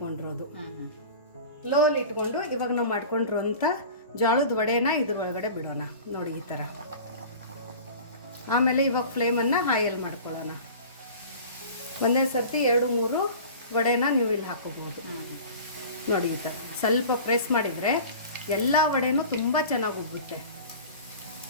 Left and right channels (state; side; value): inverted; both; correlation -0.39